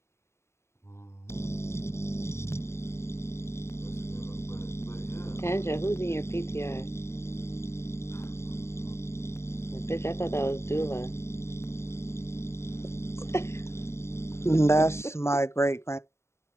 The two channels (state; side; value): late; right; 0.13 ms